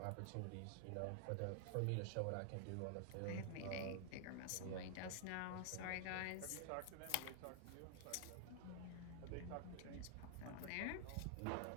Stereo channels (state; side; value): different; both; correlation 0.00